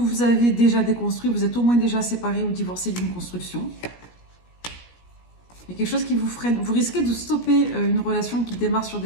avez déjà déconstruit, vous êtes au moins déjà séparé ou divorcé d'une construction. Il y a quelque chose qui vous freine. Vous risquez de stopper une relation qui démarre sur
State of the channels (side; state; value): right; late; 17 ms